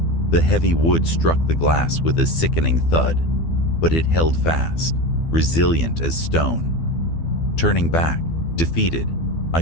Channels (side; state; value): right; late; 12 ms